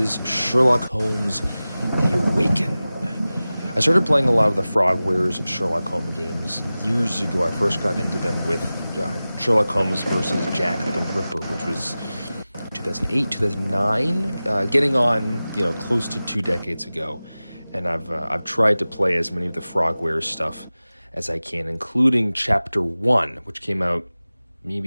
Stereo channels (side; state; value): both; inverted; correlation -0.97